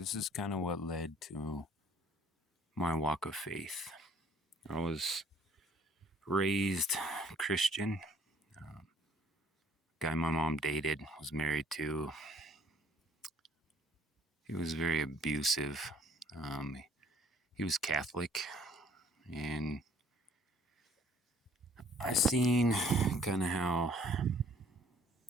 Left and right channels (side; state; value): both; normal; correlation 0.59